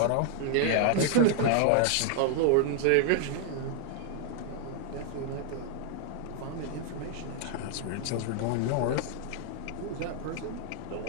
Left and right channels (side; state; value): both; different; correlation 0.00